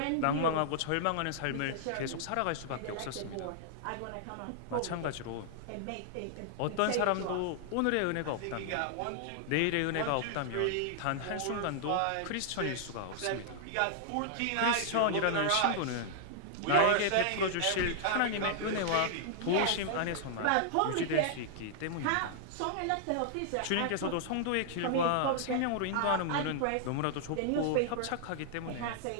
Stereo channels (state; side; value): different; both; correlation -0.01